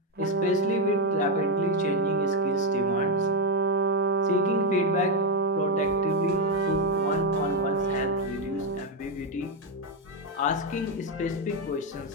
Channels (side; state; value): both; normal; correlation 0.04